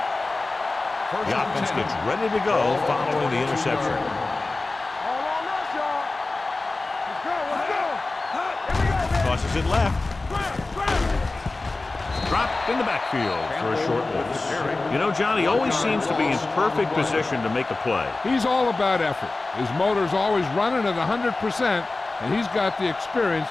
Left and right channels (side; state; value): right; quieter; 3.3 dB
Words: The offense gets ready to go following the interception. Tosses it left. Dropped in the backfield for a short loss. You know, John, he always seems to be in perfect position to make a play. He's all about effort. His motor's always running at 100%. And he's got the experience